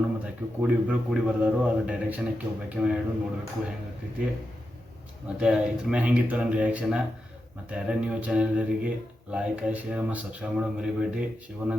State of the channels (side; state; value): both; normal; correlation 0.88